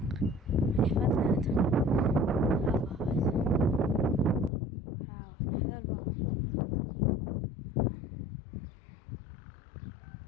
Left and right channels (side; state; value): right; drops out; at 4.5 s